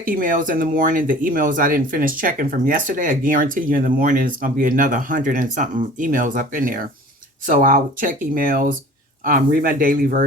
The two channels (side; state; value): both; normal; correlation 0.45